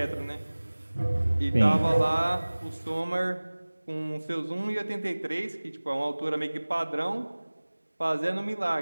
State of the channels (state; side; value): inverted; both; correlation -1.00